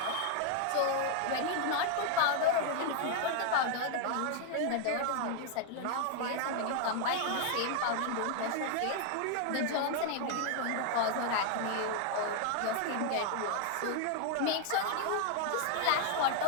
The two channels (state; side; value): different; both; correlation 0.00